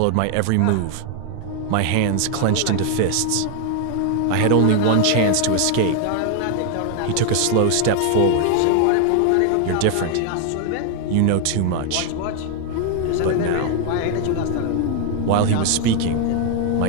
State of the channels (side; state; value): both; different; correlation 0.00